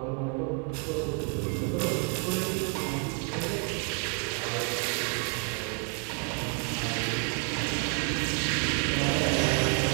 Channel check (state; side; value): quieter; left; 38.4 dB